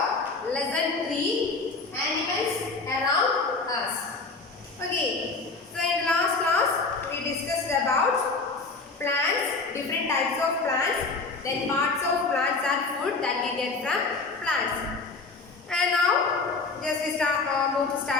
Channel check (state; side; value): quieter; right; 3.9 dB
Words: lesson 3, animals around us. Okay, so in the last class we discussed about plants, different types of plants, then parts of plants and food that we get from plants. And now just we move to